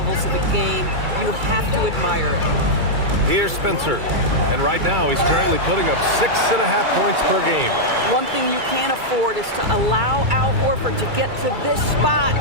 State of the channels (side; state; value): left; late; 2.3 ms